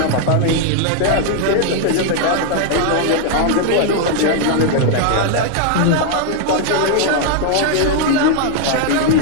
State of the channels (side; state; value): both; different; correlation 0.00